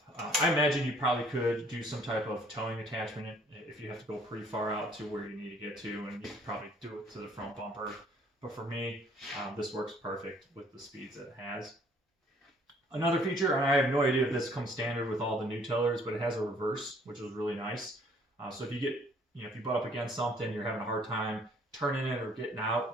I imagine you probably could do some type of towing attachment if you have to go pretty far out to where you need to get to, and you could probably do it to the front bumper. But for me, this works perfect with the speeds that it has. Another feature, and I have no idea if this comes standard with all the new tillers, but it has a reverse, which is really nice. So if you get, if you butt up against something, you're having a hard time turning it or getting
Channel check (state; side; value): normal; both; correlation 0.60